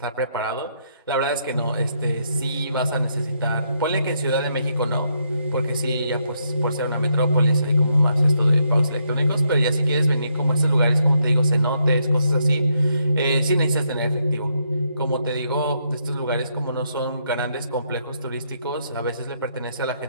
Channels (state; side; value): inverted; both; correlation -0.76